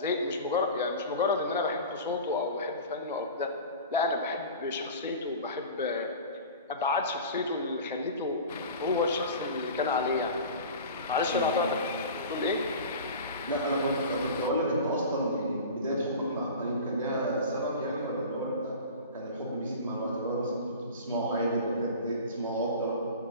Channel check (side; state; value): both; inverted; correlation -0.35